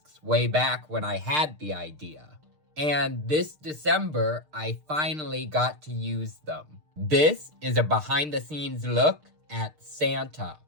way back when I had the idea. And this December, I finally got to use them. This is a behind the scenes look at Santa,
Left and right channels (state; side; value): late; left; 6.6 ms